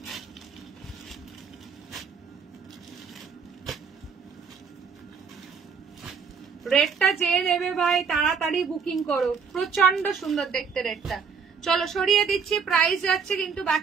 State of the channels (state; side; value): quieter; left; 6.0 dB